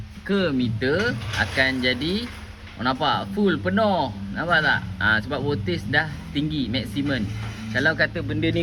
ke meter akan jadi nampak full penuh. Nampak tak? Sebab voltage dah tinggi maksimum. Kalau kata benda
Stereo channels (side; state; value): both; identical; correlation 1.00